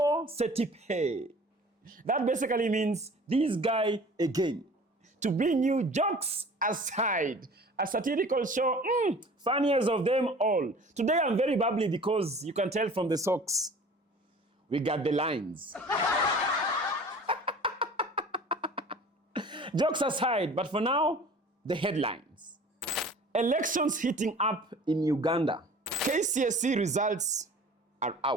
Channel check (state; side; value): normal; both; correlation 0.45